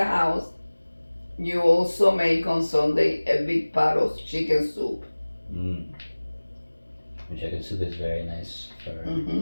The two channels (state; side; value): inverted; both; correlation -1.00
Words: house, you also make on Sunday a big pot of chicken soup. Mm. Chicken soup is very nice for